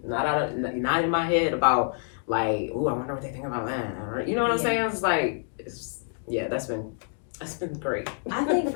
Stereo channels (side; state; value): right; silent; 60 dB below the other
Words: not in my head about like, ooh, I wonder what they think about that. You know what I'm saying? It's like, that's been great. I think